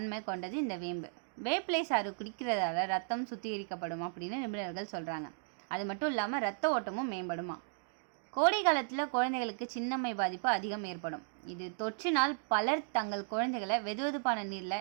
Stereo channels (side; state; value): left; silent; digital silence